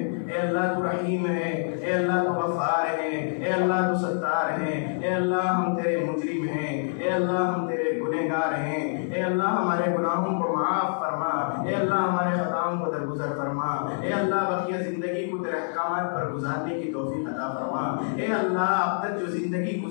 اے اللہ تو رحیم ہے اے اللہ تو غفار ہے اے اللہ تو ستار ہے اے اللہ ہم تیرے مجرم ہیں اے اللہ ہم تیرے گنہگار ہیں اے اللہ ہمارے گناہوں کو معاف فرما اے اللہ ہمارے خطاؤں کو درگزر فرما اے اللہ بقیہ زندگی کو تیرے احکامات پر گزارنے کی توفیق عطا فرما اے اللہ اب تک جو زندگی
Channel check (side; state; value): right; silent; digital silence